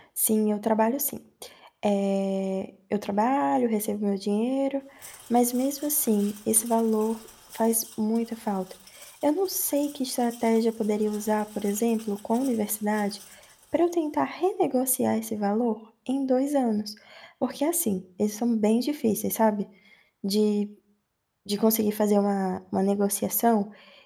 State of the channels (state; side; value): identical; both; correlation 1.00